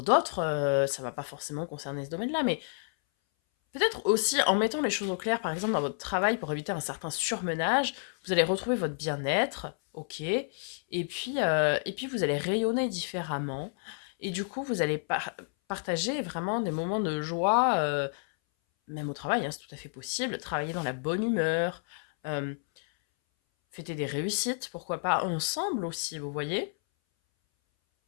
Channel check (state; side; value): silent; right; 58 dB below the other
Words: d'autres, ça va pas forcément concerner ce domaine-là, mais peut-être aussi en mettant les choses au clair, par exemple dans votre travail, pour éviter un certain surmenage, vous allez retrouver votre bien-être, ok, et puis vous allez rayonner différemment, et du coup vous allez partager vraiment des moments de joie, même au travail, hein, c'est tout à fait possible, travailler dans la bonne humeur, euh, fêter des réussites, pourquoi pas ensemble aussi, vous voyez.